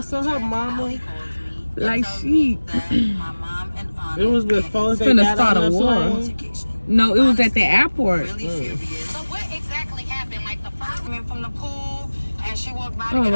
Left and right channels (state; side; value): inverted; both; correlation -1.00